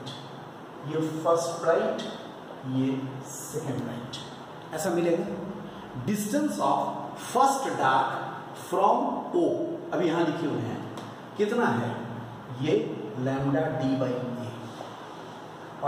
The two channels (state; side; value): identical; both; correlation 1.00